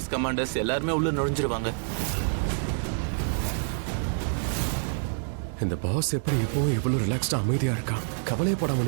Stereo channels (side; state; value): left; silent; digital silence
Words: கமாண்டர்ஸ் எல்லாருமே உள்ள நுழைஞ்சிருவாங்க. இந்த பாஸ் எப்படி எப்பவும் இவ்வளவு ரிலாக்ஸ்டா அமைதியா இருக்கான், கவலையப்படாம